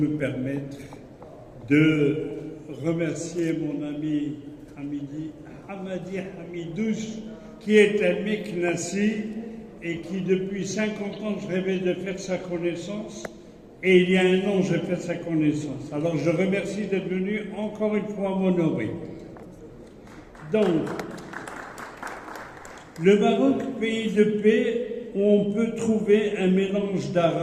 permettre de remercier mon ami Hamadi Hamidouche, qui est un Meknassi et qui, depuis 50 ans, je rêvais de faire sa connaissance. Et il y a un an, j'ai fait sa connaissance. Alors, je remercie d'être venu encore une fois m'honorer. Donc, le Maroc, pays de paix, où on peut trouver un mélange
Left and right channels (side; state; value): both; identical; correlation 1.00